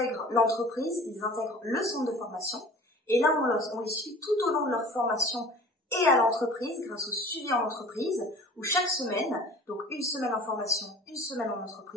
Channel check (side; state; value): both; normal; correlation 0.44